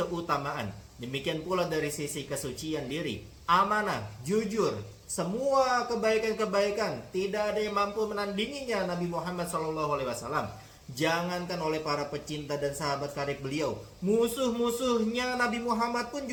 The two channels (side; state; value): both; identical; correlation 1.00